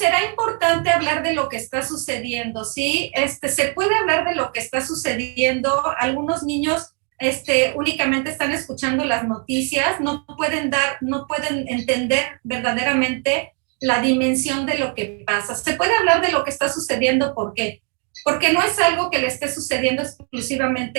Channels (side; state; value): left; quieter; 36.1 dB